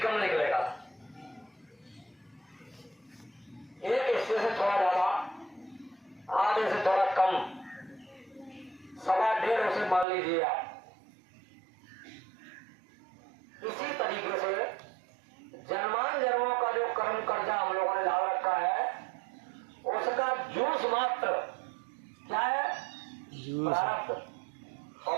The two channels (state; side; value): drops out; left; at 10.1 s